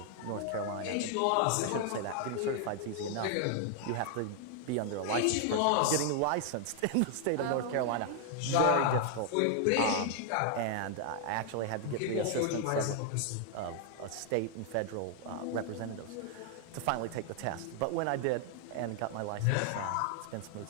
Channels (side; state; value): both; different; correlation 0.00